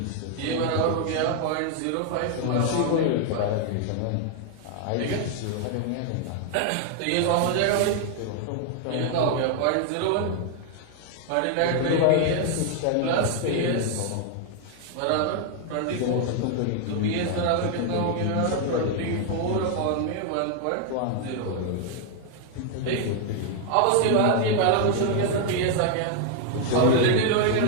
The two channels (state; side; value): different; both; correlation 0.00